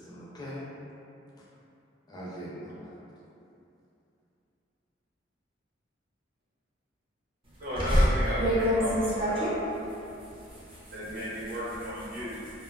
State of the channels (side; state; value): both; normal; correlation 0.55